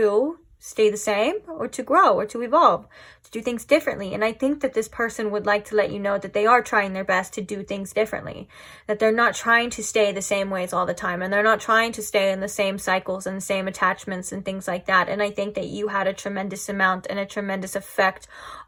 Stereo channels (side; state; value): both; identical; correlation 1.00